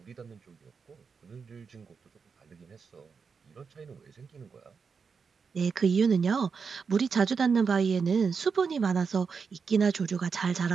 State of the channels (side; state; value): left; quieter; 5.6 dB